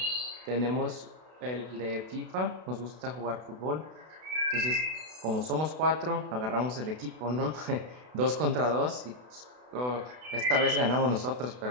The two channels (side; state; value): left; late; 32 ms